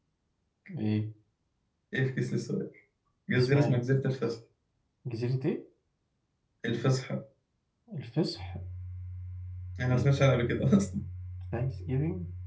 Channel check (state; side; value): identical; both; correlation 1.00